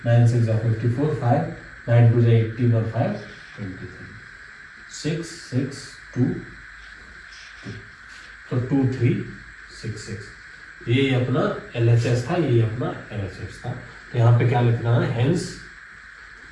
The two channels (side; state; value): both; identical; correlation 1.00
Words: 9 6 जा 54, 5 9 2 जा 18 और 5 23, 6 6 2 2, तो 2366 ये अपना एलएचएस था, ये अपना एलएचएस था। तो यहाँ पे क्या लिखना है, hence